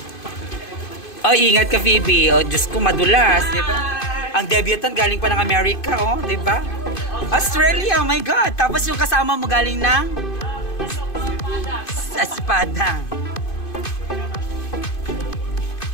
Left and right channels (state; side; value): late; right; 2.5 ms